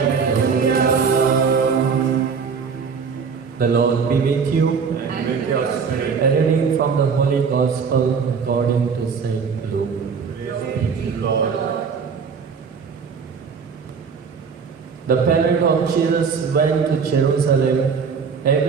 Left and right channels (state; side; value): quieter; left; 5.8 dB